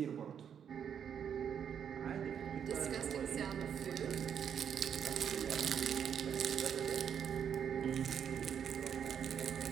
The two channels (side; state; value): left; quieter; 8.2 dB